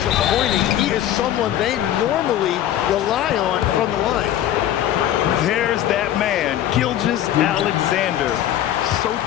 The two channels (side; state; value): right; quieter; 11.8 dB